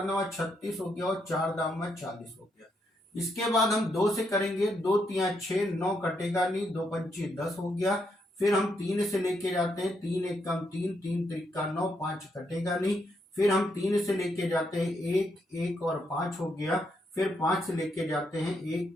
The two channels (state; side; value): normal; both; correlation 0.78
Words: 9 36 हो गया और 4 दाम 40 हो गया। इसके बाद हम 2 से करेंगे, 2 3 6, 9 कटेगा नहीं, 2 पंचे 10 हो गया। फिर हम 3 से लेके जाते हैं, 3 1 कम 3, 3 3 9, 5 कटेगा नहीं। फिर हम 3 से लेके जाते हैं, 1 1 और 5 हो गया। फिर 5 से लेके जाते हैं,